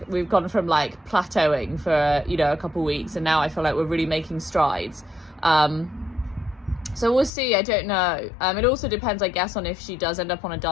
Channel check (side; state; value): right; drops out; at 7.3 s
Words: we've gone from like plateauing for, you know, a couple of weeks, and now I feel like we're really making strides. So we'll see. I don't know. It also depends, I guess, on if she does end up on a